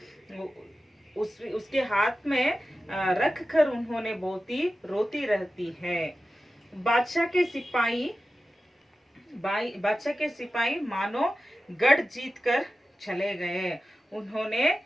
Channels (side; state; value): both; normal; correlation 0.94